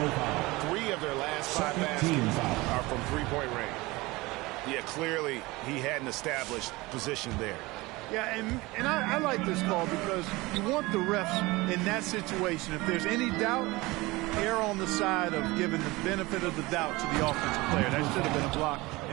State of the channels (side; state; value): left; quieter; 21.8 dB